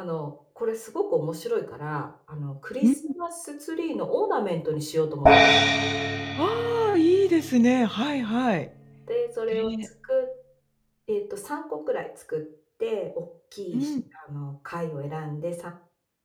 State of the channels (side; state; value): both; identical; correlation 1.00